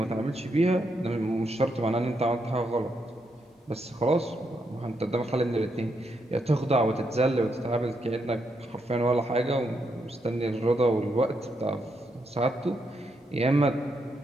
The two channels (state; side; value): normal; both; correlation 0.80